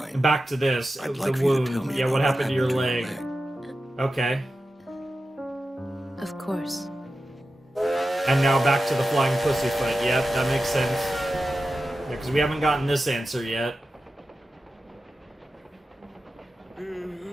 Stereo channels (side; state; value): both; normal; correlation 0.92